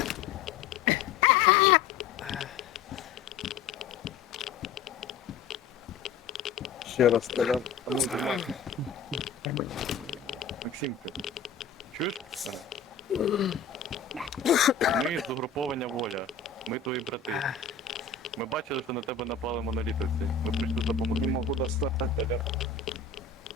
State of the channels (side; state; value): right; quieter; 6.0 dB